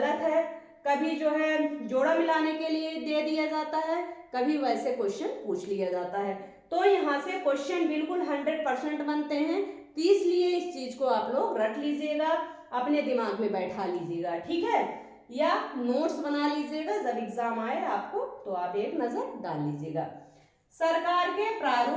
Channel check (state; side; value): identical; both; correlation 1.00